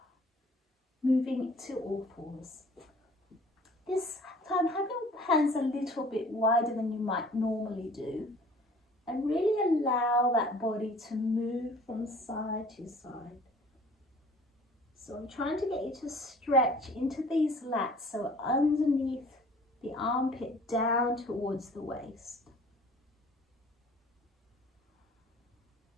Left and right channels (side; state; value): both; normal; correlation 0.51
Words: Moving to all fours. This time, have your hands a little bit wider than you might normally do. And really allow that body to move from side to side. So I'm trying to get you to stretch into these lats, so underneath the armpit down towards the waist.